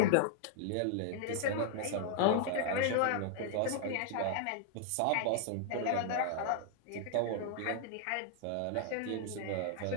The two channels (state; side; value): different; both; correlation 0.00